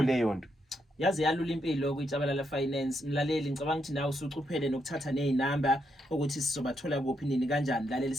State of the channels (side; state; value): both; normal; correlation 0.79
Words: leyo nto. Yazi yalula impilo kuJabalala Finance mlaleli ngicabanga ukuthi nawe usucuphele nokuthatha nezinamba ukuthi sizobathola kuphi nini kanjani mlaleli